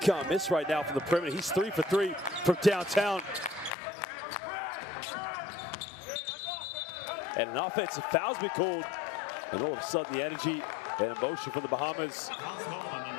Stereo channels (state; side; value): drops out; right; at 3.8 s